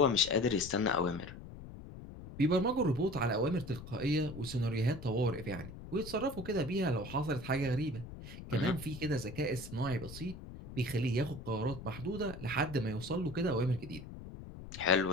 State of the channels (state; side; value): noise; left; rumble, 12 dB below the sound